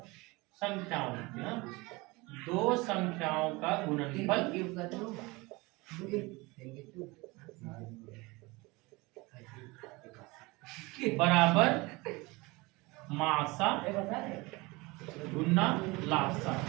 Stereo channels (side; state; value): left; quieter; 23.7 dB